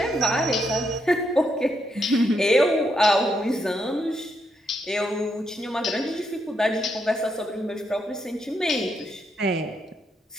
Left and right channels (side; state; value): both; normal; correlation 0.79